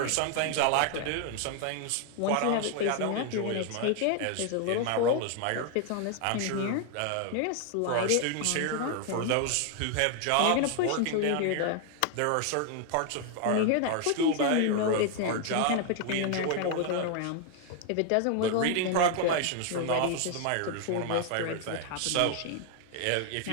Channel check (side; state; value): both; different; correlation 0.00